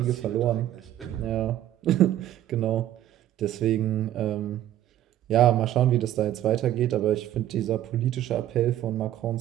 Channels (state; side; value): quieter; left; 12.5 dB